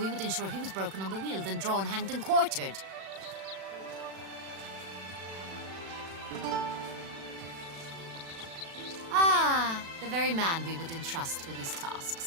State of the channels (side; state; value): left; late; 36 ms